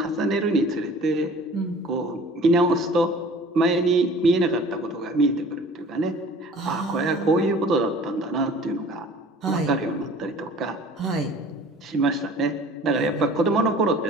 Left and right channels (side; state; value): both; normal; correlation 0.47